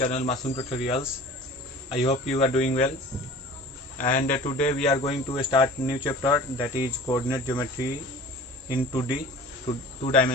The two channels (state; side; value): normal; both; correlation 0.42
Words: Masoom Tutorials. I hope you are doing well and today we are going to start new chapter, that is coordinate geometry in 2D two